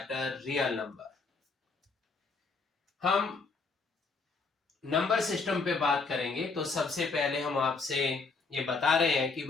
real number. हम नंबर सिस्टम पे बात करेंगे। तो सबसे पहले हम आपसे ये बता रहे हैं कि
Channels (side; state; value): right; quieter; 4.3 dB